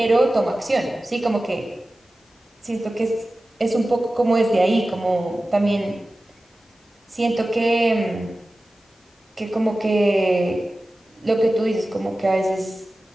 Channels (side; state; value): both; normal; correlation 0.95